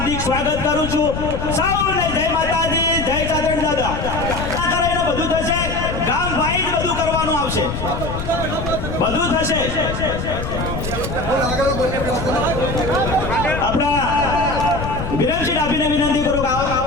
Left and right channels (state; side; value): noise; left; rumble, 5 dB below the sound